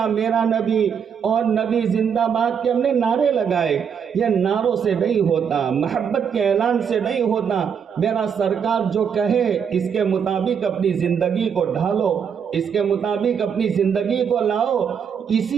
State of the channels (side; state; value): left; quieter; 7.2 dB